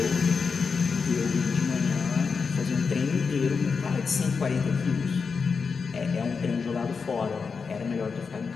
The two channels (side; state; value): right; quieter; 5.3 dB